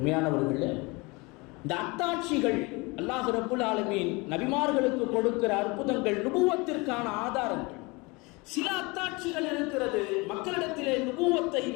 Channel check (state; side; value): quieter; right; 26.1 dB